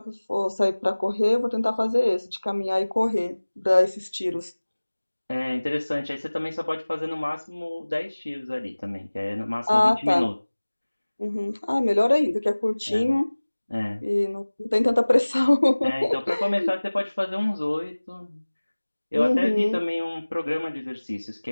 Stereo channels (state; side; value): inverted; both; correlation -1.00